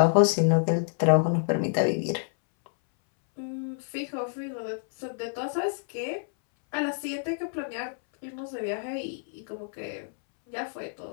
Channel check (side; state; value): right; silent; 59 dB below the other